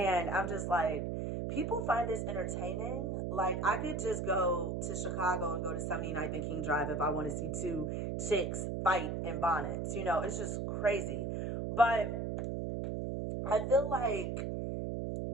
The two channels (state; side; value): noise; right; hum, 2 dB below the sound